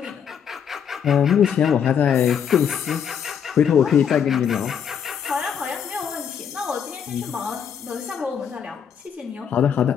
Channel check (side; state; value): right; quieter; 7.9 dB